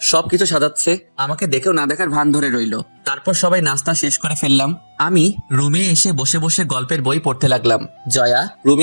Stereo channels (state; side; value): inverted; both; correlation -1.00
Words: সবকিছু সাজাচ্ছে, আমাকে দেখেও না দেখার ভান ধরে রইলো। তারপর সবাই নাস্তা শেষ করে ফেললাম। আমি রুমে এসে বসে বসে গল্পের বই পড়তে লাগলাম। জয়া